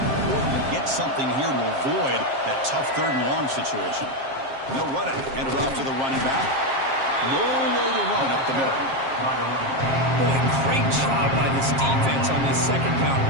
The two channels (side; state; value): left; late; 7.5 ms